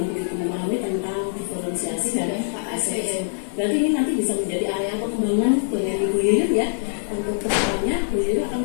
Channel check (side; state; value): right; silent; 63 dB below the other